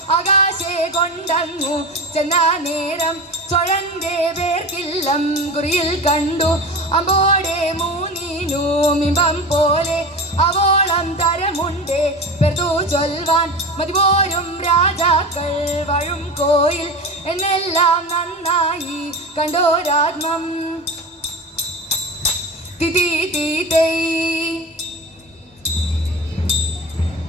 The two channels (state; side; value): normal; both; correlation 0.28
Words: ആകാശെ കൊണ്ടങ്ങു ചെന്ന നേരം ചൊഴന്റെ പേർക്കില്ലം കുറിയിൽ കണ്ടു അമ്പോടെ മൂന്നിനുമിമ്പം പോലെ അവോളം തരമുണ്ടേ പെർത്തു ചൊൽവാൻ മതിപോരും രാജാക്കൾ വഴും കോയിൽ എന്നെല്ലാം നന്നായി കണ്ടോരാത്മം തിതി തീതൈ